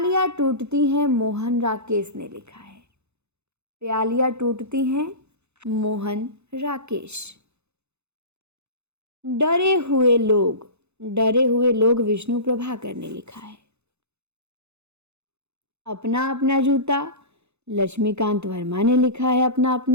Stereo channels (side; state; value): left; late; 0.81 ms